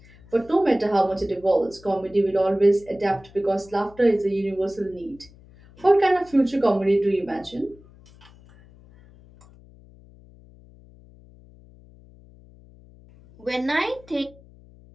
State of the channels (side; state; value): left; noise; hum, 24 dB below the sound